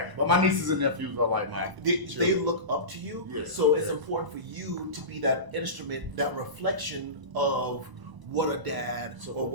But my nieces and nephews are like mine. They look up to you. So it's important for you to be that instrument, that reflection of what a dad or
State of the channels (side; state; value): left; late; 1.0 ms